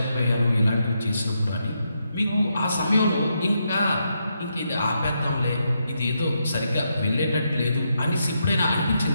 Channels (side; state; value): both; inverted; correlation -0.81